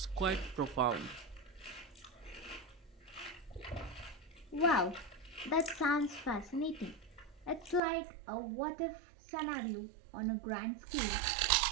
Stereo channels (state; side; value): drops out; left; at 7.8 s